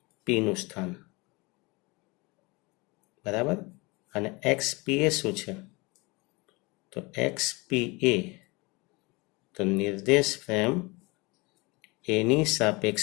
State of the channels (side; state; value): right; quieter; 25.6 dB